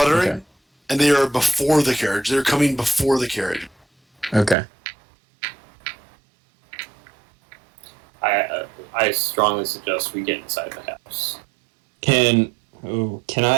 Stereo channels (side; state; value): left; drops out; at 4.5 s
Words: and they are before the carriage. They're coming before the carriage. Okay. I strongly suggest we get inside the house. Can